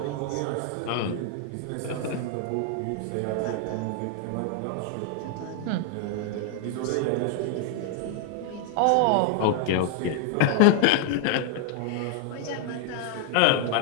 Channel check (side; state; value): both; different; correlation 0.00